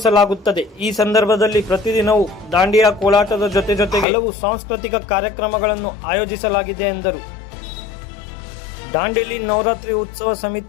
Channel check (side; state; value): right; drops out; at 4.0 s